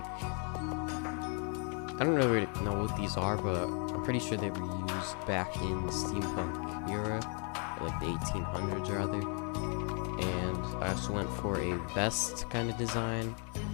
I don't really know what these are, but I'm pretty sure they were used back in the steampunk era, like the 1800s rather. And I also went for a vest kind of design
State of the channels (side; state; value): right; quieter; 38.7 dB